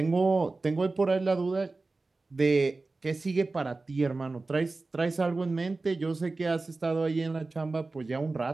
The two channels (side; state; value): left; quieter; 3.5 dB